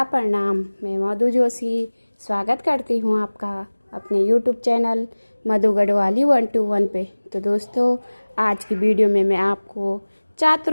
प्रणाम। मैं मधु जोशी स्वागत करती हूँ आपका अपने YouTube चैनल मधु गढ़वाली 121 पे। तो दोस्तों, आज की वीडियो में मैं आपको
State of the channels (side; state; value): both; inverted; correlation -1.00